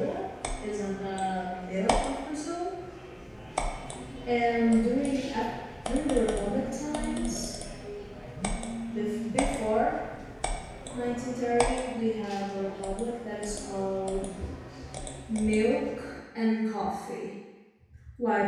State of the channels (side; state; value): both; identical; correlation 1.00